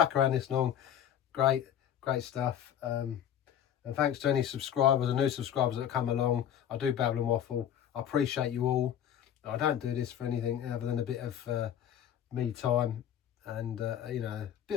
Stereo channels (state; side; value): quieter; right; 9.9 dB